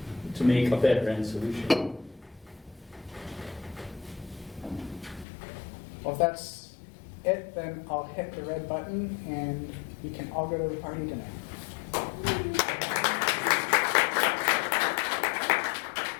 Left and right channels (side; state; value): right; drops out; at 5.2 s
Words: to make a better end solution. Well, if that's it, then I'll hit the red button and we can all go to the party tonight.